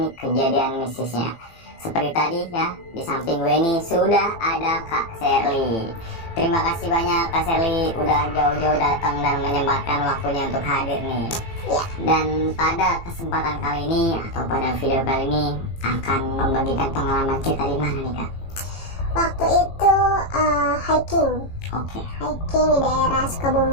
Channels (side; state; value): right; late; 18 ms